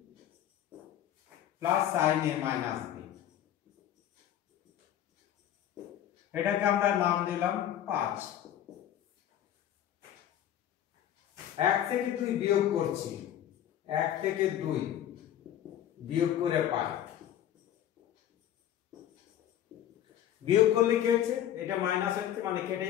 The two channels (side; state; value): right; quieter; 11.2 dB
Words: plus sin a minus b। এটাকে আমরা নাম দিলাম 5। 1 থেকে 2 বিয়োগ করছি, 1 থেকে 2 বিয়োগ করে পাই। বিয়োগ করলে কি হচ্ছে? এটা মাইনাস হচ্ছে, মানে কেটে